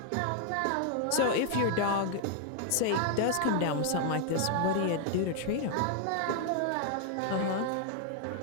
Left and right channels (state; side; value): different; both; correlation 0.00